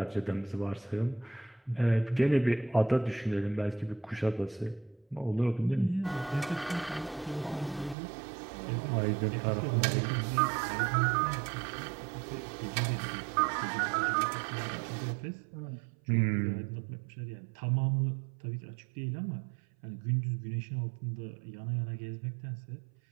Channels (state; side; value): drops out; left; at 8.0 s